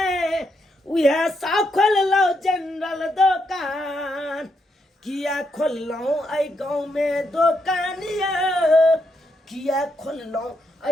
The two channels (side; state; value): both; normal; correlation 0.79